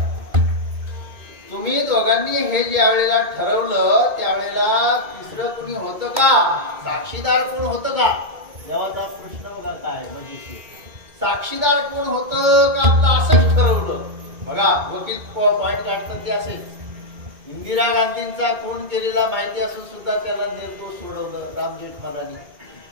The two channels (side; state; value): left; late; 2.2 ms